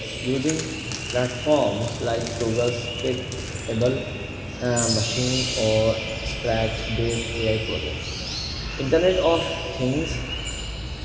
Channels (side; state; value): both; identical; correlation 1.00